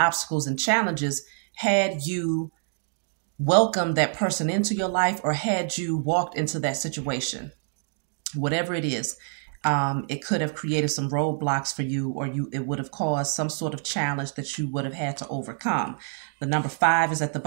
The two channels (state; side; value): silent; left; digital silence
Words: and challenges had you welcomed that person into your life or had you walked into that situation. Whatever it is, it could have created some roadblocks for you, or it would have caused some sort of challenge that you would have had to overcome. The number 5 is at the